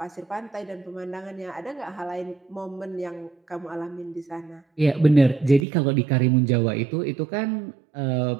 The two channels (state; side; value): drops out; left; at 5.7 s